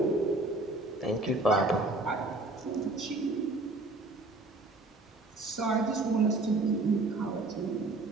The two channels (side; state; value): left; quieter; 3.0 dB